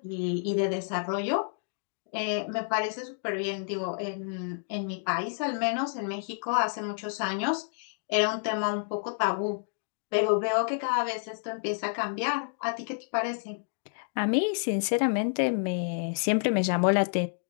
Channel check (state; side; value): silent; right; digital silence